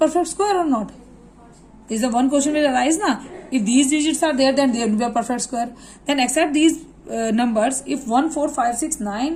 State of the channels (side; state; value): both; identical; correlation 1.00